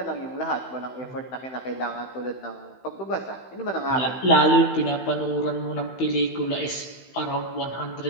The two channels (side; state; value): right; late; 16 ms